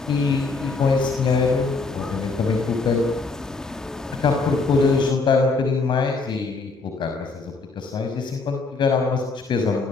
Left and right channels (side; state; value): right; quieter; 4.0 dB